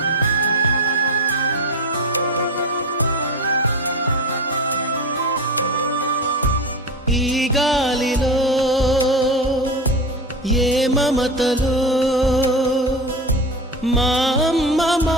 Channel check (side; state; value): both; normal; correlation 0.25